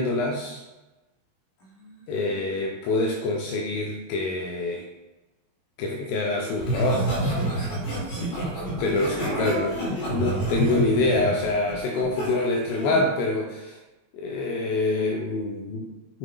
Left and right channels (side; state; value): right; late; 21 ms